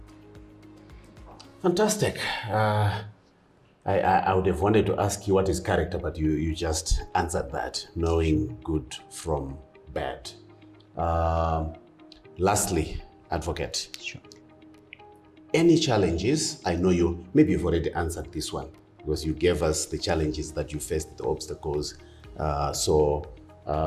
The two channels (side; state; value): both; identical; correlation 1.00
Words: Fantastic. I would have wanted to ask you what is character, but you just answered that, knowing good from bad. Lastly, advocate. Sure. Any challenges? I know maybe you've already answered this one because you gave us the challenges that you faced, the obstacles.